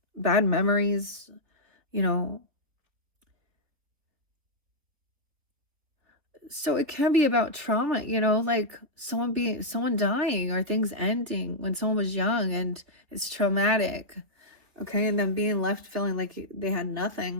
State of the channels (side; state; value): left; late; 3.4 ms